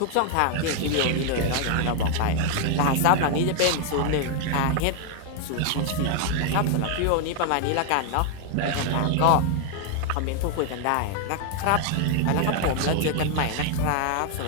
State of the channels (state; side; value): different; both; correlation 0.00